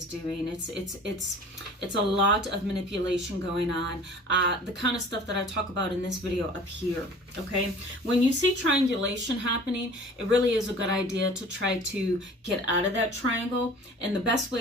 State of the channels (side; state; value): both; normal; correlation 0.45